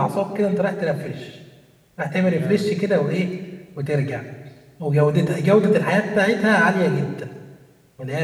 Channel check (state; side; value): identical; both; correlation 1.00